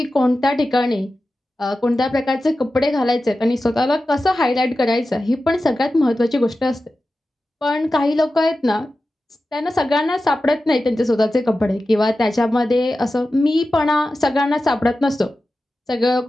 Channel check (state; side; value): normal; both; correlation 0.93